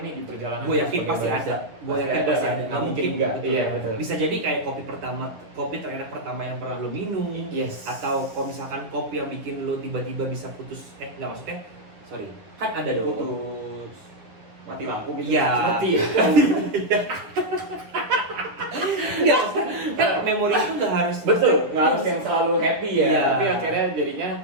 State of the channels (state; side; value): late; left; 10 ms